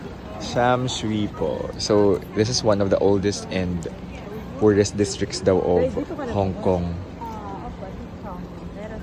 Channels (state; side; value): identical; both; correlation 1.00